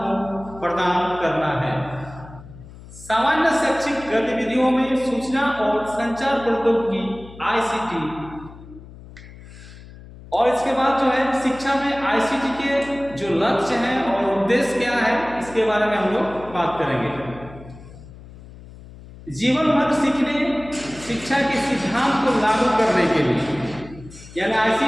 प्रदान करना है। सामान्य शैक्षिक गतिविधियों में सूचना और संचार प्रौद्योगिकी आईसीटी और इसके बाद जो है शिक्षा में आईसीटी के जो लक्ष्य हैं और उद्देश्य क्या है इसके बारे में हम लोग बात करेंगे। जीवन भर सीखने शिक्षा के सिद्धांत को लागू करने के लिए, यानी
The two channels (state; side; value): noise; left; hum, 18 dB below the sound